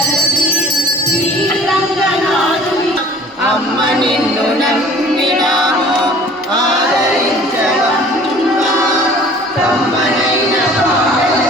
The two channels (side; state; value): both; normal; correlation 0.49